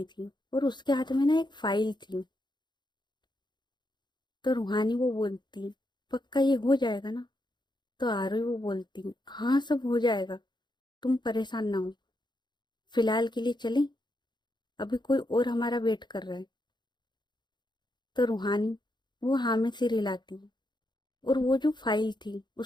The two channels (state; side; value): late; right; 0.21 ms